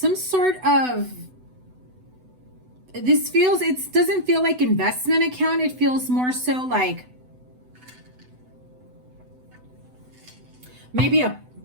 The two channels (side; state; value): left; late; 8.0 ms